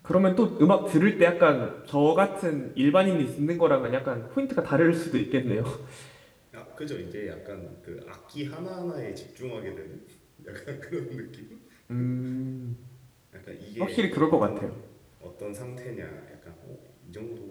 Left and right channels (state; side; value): identical; both; correlation 1.00